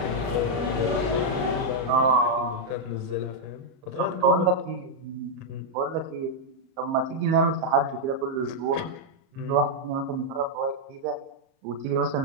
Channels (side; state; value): left; late; 38 ms